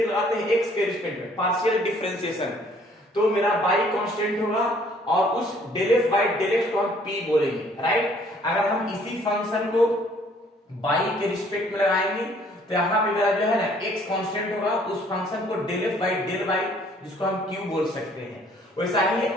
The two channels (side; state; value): both; normal; correlation 0.60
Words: लगाते हैं x के रिस्पेक्ट में पार्शियल डिफरेंशिएशन, तो मेरा y कांस्टेंट होगा और उस del f by del x को हम p बोलेंगे, राइट। अगर हम इसी फंक्शन को y के रिस्पेक्ट में लगाएंगे तो यहाँ पे मेरा जो है ना x कांस्टेंट होगा, उस फंक्शन को del f by del y जिसको हम q बोल सकते हैं। वैसा ही